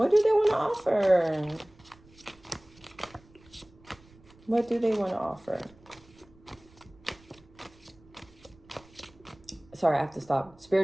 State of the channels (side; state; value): right; noise; rumble, 26 dB below the sound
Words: do they want to offer? What do they want to offer? Sorry, I have to stop.